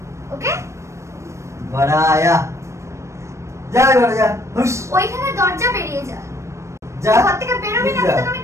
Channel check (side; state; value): left; late; 0.14 ms